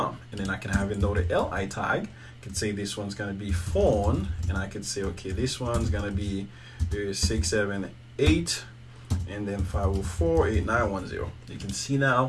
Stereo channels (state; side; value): identical; both; correlation 1.00